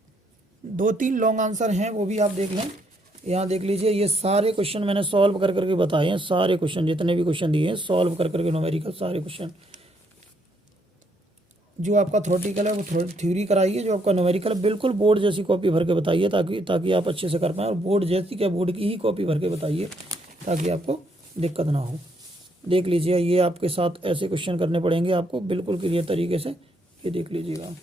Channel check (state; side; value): normal; both; correlation 0.73